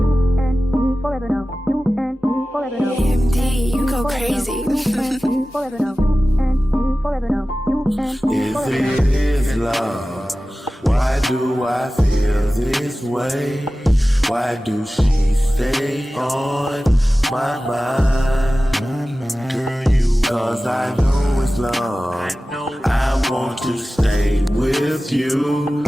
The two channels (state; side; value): normal; both; correlation 0.96